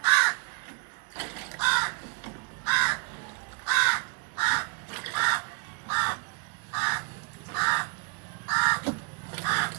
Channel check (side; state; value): left; quieter; 34.4 dB